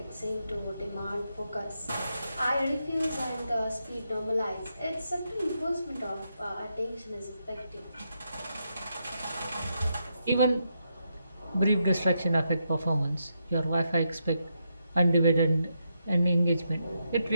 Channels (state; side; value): inverted; both; correlation -0.82